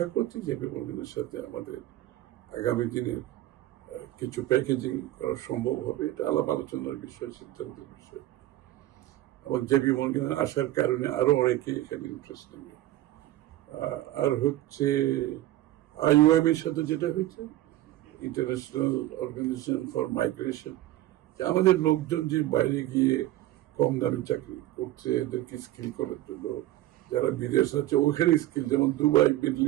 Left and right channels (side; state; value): left; quieter; 15.0 dB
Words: করছি জেপি মর্গেনের সাথে আমাদের আগামী দিনের কিছু প্যাকেজিং করা সম্ভব হবে। এটা আলাপ আলোচনার বিষয়, সিদ্ধান্তের বিষয়। এবং জেপি মর্গেনের আসার কারণে আরো অনেকে এখানে ইন্টারেস্ট নেবে। আর হচ্ছে আইওএম এর সাথে যেটা হয়েছে, ইন্টারন্যাশনাল অর্গানাইজেশন ফর মাইগ্রেশন, আমাদের লোকজন যে বাইরে গিয়ে কম দামে চাকরি করছে এদেরকে স্কিল করার জন্য, যারা বিদেশ আছে ওখানে স্কিল, যেমন দুবাই মিডল